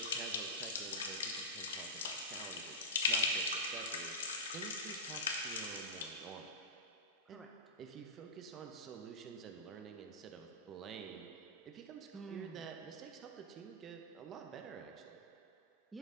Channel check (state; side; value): normal; both; correlation -0.18